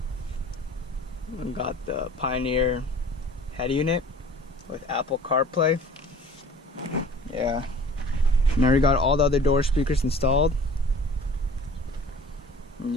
the Pioneer head unit with Apple CarPlay. Yeah, and I already got all the other door speakers installed. And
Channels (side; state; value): both; normal; correlation 0.47